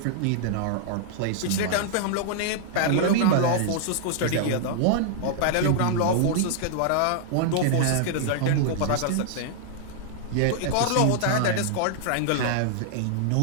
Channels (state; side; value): different; both; correlation -0.01